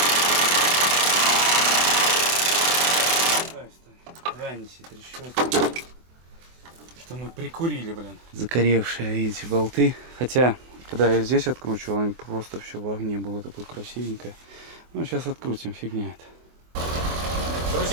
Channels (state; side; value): late; left; 24 ms